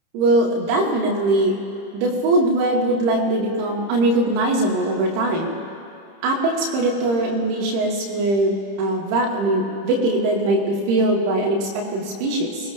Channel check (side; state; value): left; late; 30 ms